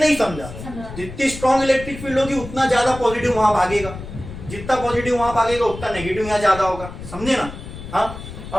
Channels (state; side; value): noise; left; rumble, 12 dB below the sound